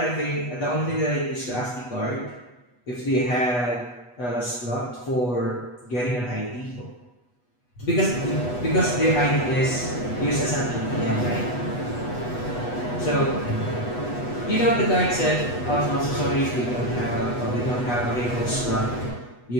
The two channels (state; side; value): late; right; 8.2 ms